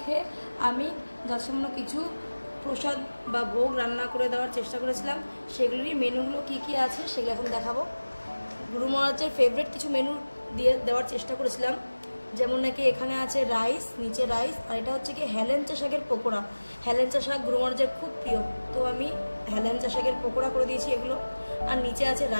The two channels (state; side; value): inverted; both; correlation -1.00